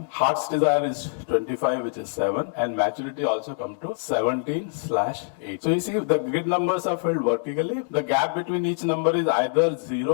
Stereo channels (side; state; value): right; silent; digital silence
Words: Heart's desire is 25, which is 7. And maturity also comes to 17/8. So you see, the grid numbers are filled vertically. The gap between each number is either